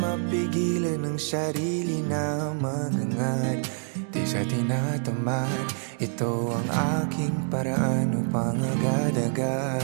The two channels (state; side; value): silent; left; digital silence